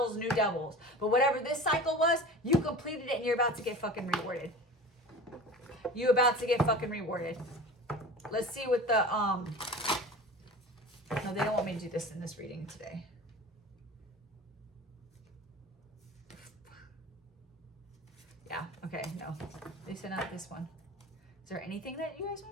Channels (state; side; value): normal; both; correlation 0.36